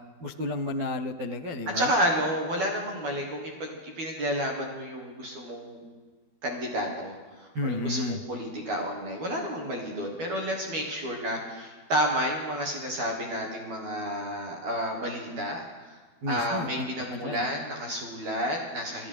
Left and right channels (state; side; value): late; left; 12 ms